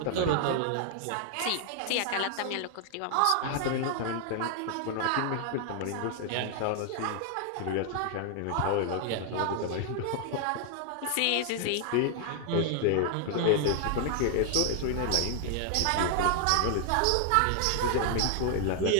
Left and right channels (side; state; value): both; different; correlation 0.00